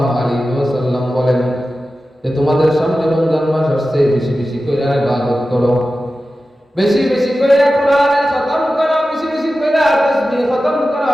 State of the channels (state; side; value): normal; both; correlation 0.94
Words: আলাইহি ওয়াসাল্লাম বলেন যে তোমাদের সামনে রমজান মাস আসছে, বেশি বেশি করে ইবাদত করো, বেশি বেশি করে কোরআনের খতম করো, বেশি বেশি করে তাসবিহ খতম করো,